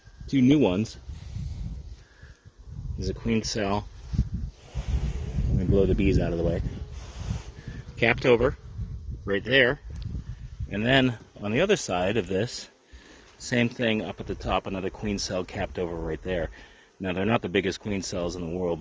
2 new ones. There's a queen cell. Let me blow the bees out of the way. Capped over, right there. And then on the other side of this, same thing up at the top, another queen cell capped over right there. Now, they're not the biggest queen cells in the world,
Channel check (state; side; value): identical; both; correlation 1.00